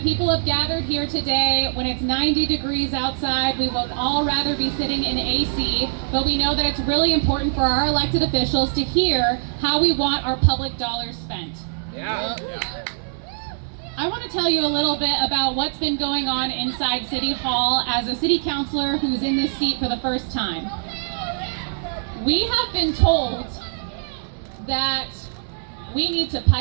people have gathered here today when it's 90 degrees outside. We would all rather be sitting in AC, but we know that it's really important for our elected officials to hear how we want our public dollars spent. Yeah. I want to tell you a little bit about what's been going on inside City Hall as a city councilor who's in this seat for the first time. We have been told that we need to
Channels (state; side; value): silent; left; 63 dB below the other